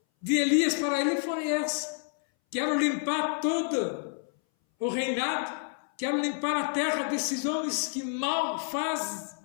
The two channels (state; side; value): silent; right; 58 dB below the other